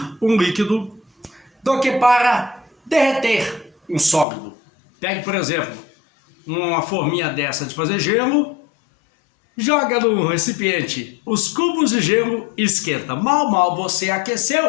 um líquido do que para derreter um sólido? Pegue, por exemplo, uma forminha dessa de fazer gelo, joga no recipiente os cubos de gelo e esquenta. Mal você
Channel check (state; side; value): drops out; right; at 4.2 s